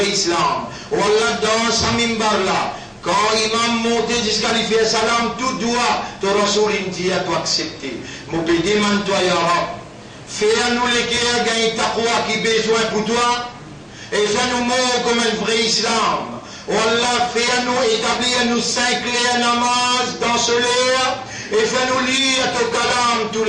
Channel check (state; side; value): identical; both; correlation 1.00